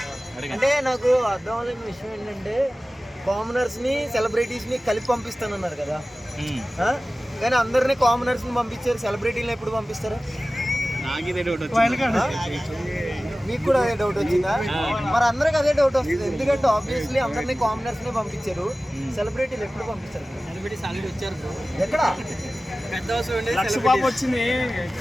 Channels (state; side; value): normal; both; correlation 0.96